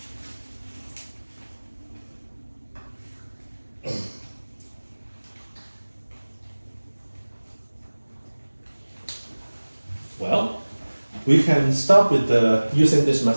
Well, we can start with using this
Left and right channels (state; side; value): inverted; both; correlation -1.00